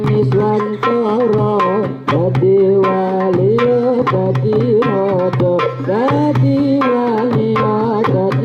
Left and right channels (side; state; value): both; identical; correlation 1.00